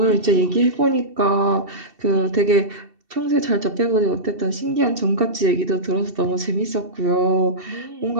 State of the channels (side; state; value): left; late; 2.7 ms